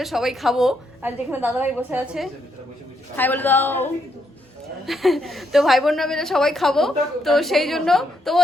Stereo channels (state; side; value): normal; both; correlation 0.77